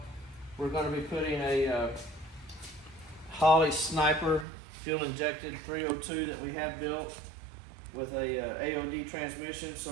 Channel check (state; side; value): drops out; left; at 4.5 s